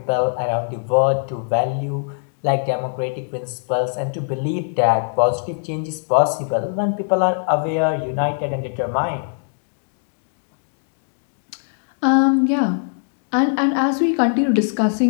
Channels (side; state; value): right; silent; digital silence